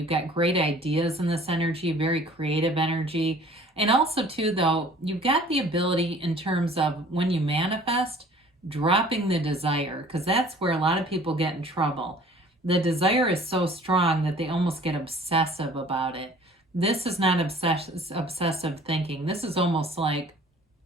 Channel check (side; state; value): both; normal; correlation 0.51